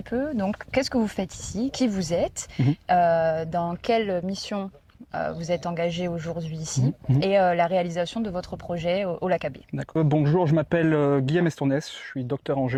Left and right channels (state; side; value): identical; both; correlation 1.00